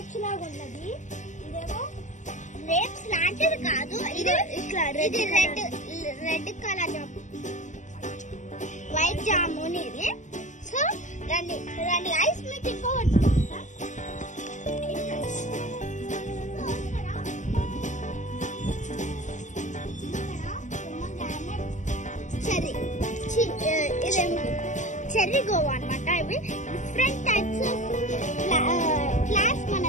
లాగా ఉన్నది. ఇదేమో గ్రేప్స్ లాంటిది కాదు, ఇది ఇది రెడ్ కలర్ వైట్ జామున్ ఇది. సో రండి ఐస్ మీకు ఇంకోవచ్చు. చెర్రీ గోవా అన్నమాట. ఇవి డిఫరెంట్ టైప్స్ ఆఫ్ ఫ్లాట్స్ మన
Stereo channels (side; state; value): right; late; 0.35 ms